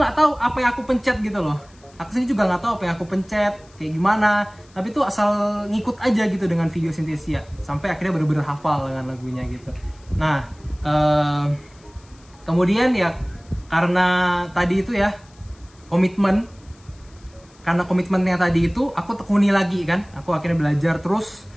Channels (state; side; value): noise; left; hiss, 29 dB below the sound